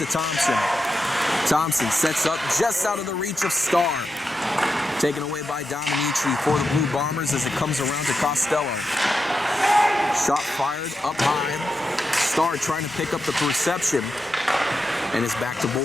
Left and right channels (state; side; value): normal; both; correlation 0.88